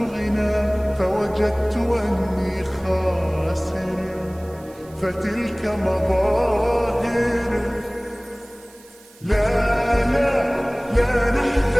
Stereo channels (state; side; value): noise; right; hiss, 26 dB below the sound